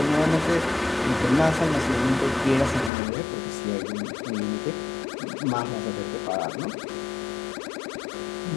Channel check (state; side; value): drops out; right; at 2.9 s